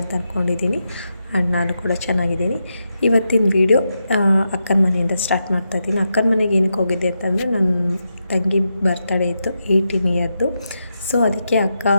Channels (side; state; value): both; inverted; correlation -0.86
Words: ಅಂತ ಅಂದ್ಕೊಂಡಿದ್ದೀನಿ. ಆ್ಯಂಡ್ ನಾನು ಕೂಡ ಚೆನ್ನಾಗಿದ್ದೀನಿ. ಇವತ್ತಿನ ವಿಡಿಯೋ ಅಕ್ಕನ ಮನೆಯಿಂದ ಸ್ಟಾರ್ಟ್ ಮಾಡ್ತಾಯಿದ್ದೀನಿ. ಅಕ್ಕನ ಮನೆಗೆ ಏನಕ್ಕೆ ಹೋಗಿದ್ದೆ ಅಂತಂದರೆ ನನ್ನ ತಂಗಿ ಬರ್ತಡೇ ಇತ್ತು, 18 ಇಯರ್ದು. ಸೊ ಅದಕ್ಕೆ ಅಕ್ಕ